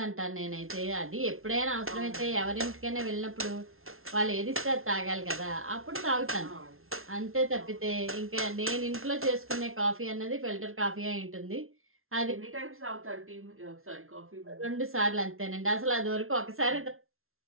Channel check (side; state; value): left; late; 0.62 ms